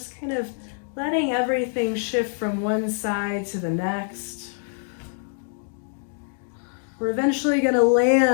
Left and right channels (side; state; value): right; silent; 58 dB below the other